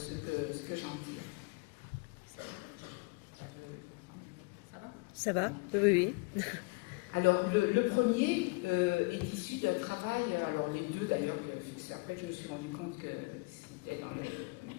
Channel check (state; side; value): quieter; right; 28.6 dB